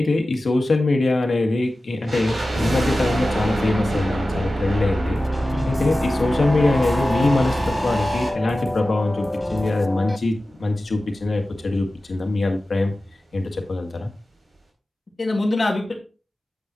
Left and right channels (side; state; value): both; normal; correlation 0.95